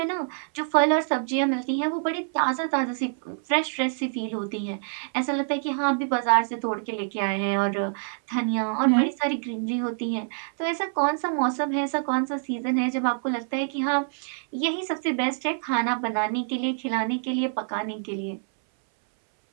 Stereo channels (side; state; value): left; silent; 61 dB below the other